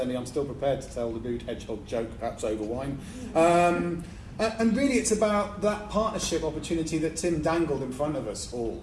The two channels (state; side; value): identical; both; correlation 1.00